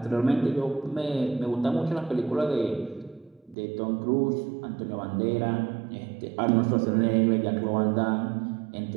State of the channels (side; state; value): left; drops out; at 3.6 s